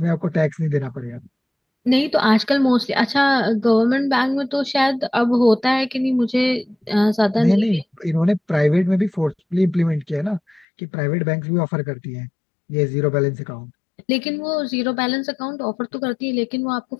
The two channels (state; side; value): drops out; right; at 10.7 s